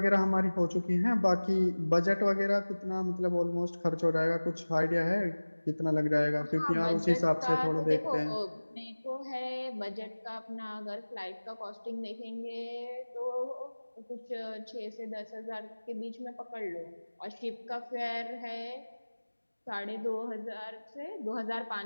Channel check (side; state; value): both; inverted; correlation -1.00